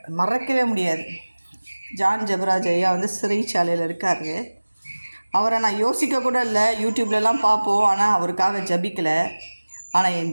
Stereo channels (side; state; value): both; inverted; correlation -1.00